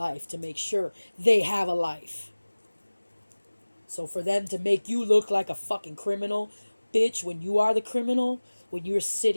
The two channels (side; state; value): both; inverted; correlation -1.00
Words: to make sure they have a life. So for them to make you look like a fucking criminal, bitch, when you are the criminal, when you're